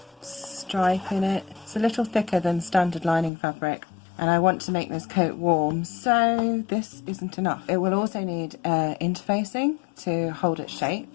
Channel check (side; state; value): right; drops out; at 3.3 s